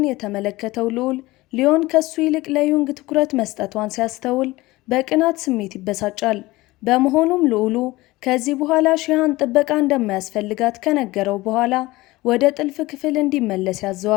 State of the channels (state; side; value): quieter; right; 19.7 dB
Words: የተመለከተው ልዑል ሊዮን ከሱ ይልቅ ለዩንግ ትኩረት መስጠቷን ሲያስተውል በቅናት ስሜት ይበሳጫል። በመሆኑም ልዑሉ ከዚህ በኋላ ሺሃን ጥበቃ እንደማያስፈልጋት ከነገረው በኋላ ወደ ጥልፍ ክፍል እንዲመለስ